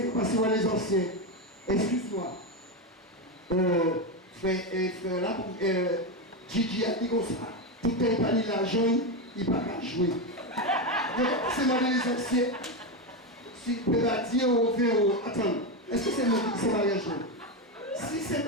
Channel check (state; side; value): normal; both; correlation 0.11